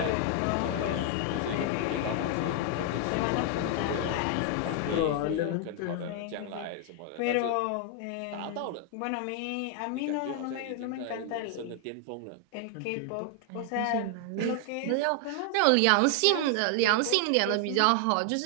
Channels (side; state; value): both; different; correlation 0.00